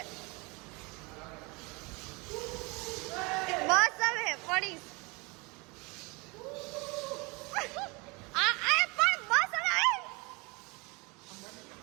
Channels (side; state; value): left; quieter; 27.3 dB